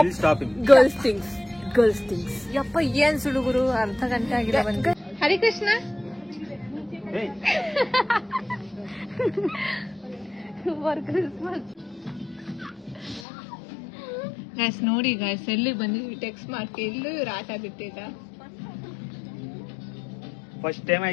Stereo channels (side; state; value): right; drops out; at 13.2 s